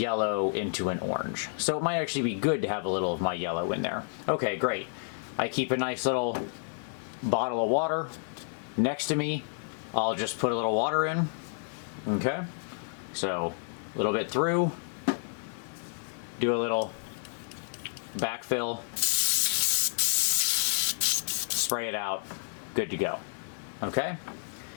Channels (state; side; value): silent; right; digital silence